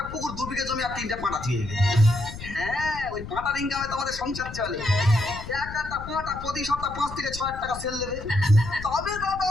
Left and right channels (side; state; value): left; noise; rumble, 11 dB below the sound